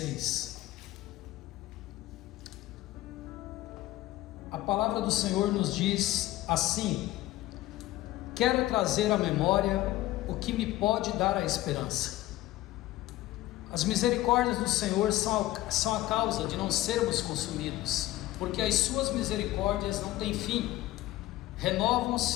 A palavra do Senhor nos diz assim: quero trazer à memória o que me pode dar a esperança. As misericórdias do Senhor são a causa de não sermos consumidos, porque as suas misericórdias não têm fim,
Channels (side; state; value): right; quieter; 16.3 dB